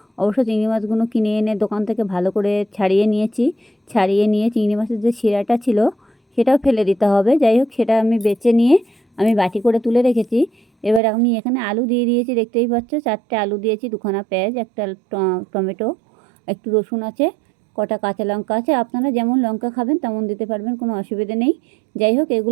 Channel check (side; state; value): left; drops out; at 11.0 s